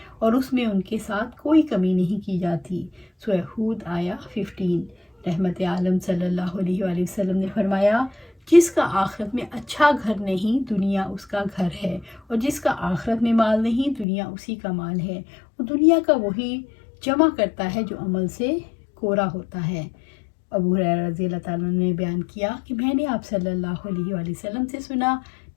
اور اس میں ان کے ساتھ کوئی کمی نہیں کی جاتی۔ سورہ ہود آیا 15۔ رحمت عالم صلی اللہ علیہ وآلہ وسلم نے فرمایا، جس کا آخرت میں اچھا گھر نہیں دنیا اس کا گھر ہے، اور جس کا آخرت میں مال نہیں دنیا اسی کا مال ہے۔ وہ دنیا کا وہی جمع کرتا ہے جو عمل سے کورا ہوتا ہے۔ ابو ہریرہ رضی اللہ تعالیٰ نے بیان کیا کہ میں نے آپ صلی اللہ علیہ وآلہ وسلم سے سنا،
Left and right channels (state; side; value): drops out; right; at 14.1 s